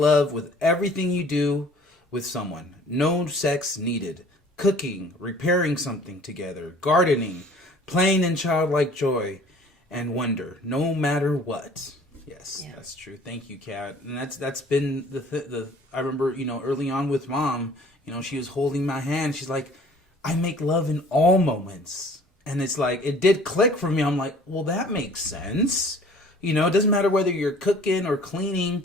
with everything you do with someone. No sex needed. Cooking, repairing something together, gardening, playing in childlike joy and wonder, no matter what. Yes, yeah. That's true. Thank you, Kat. And that's been the I remember, early on with Mom, she was holding my hand. She's like, I make love in all moments. And it's like, it did click for me. I'm like, well, that makes sense. It doesn't matter whether you're cooking or cleaning,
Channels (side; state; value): both; normal; correlation 0.52